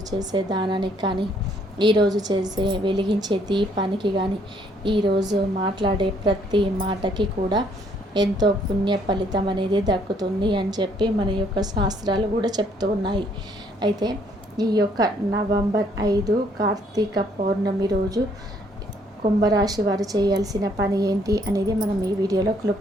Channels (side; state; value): both; normal; correlation 0.66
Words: చేసే దానానికి కానీ, ఈరోజు చేసే వెలిగించే దీపానికి కానీ, ఈరోజు మాట్లాడే ప్రతి మాటకి కూడా ఎంతో పుణ్య ఫలితం అనేది దక్కుతుంది అని చెప్పి మన యొక్క శాస్త్రాలు కూడా చెప్తూ ఉన్నాయి. అయితే ఈ యొక్క నవంబర్ 5 కార్తీక పౌర్ణమి రోజు కుంభరాశి వారు చేయాల్సిన పని ఏంటి అనేది మనం ఈ వీడియోలో